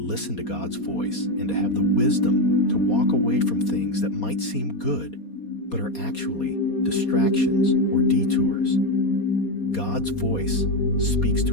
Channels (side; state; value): right; late; 4.2 ms